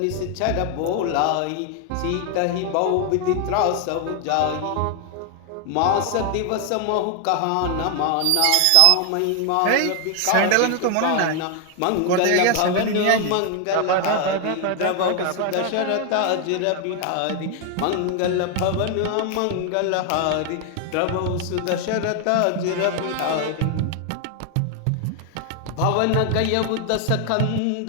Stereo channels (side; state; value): both; different; correlation 0.00